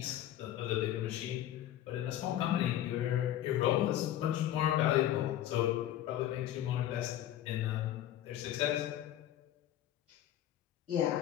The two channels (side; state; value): right; quieter; 12.4 dB